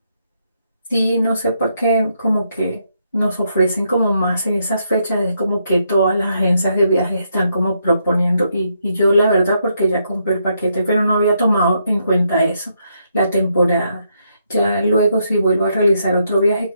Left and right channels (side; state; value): both; inverted; correlation -0.77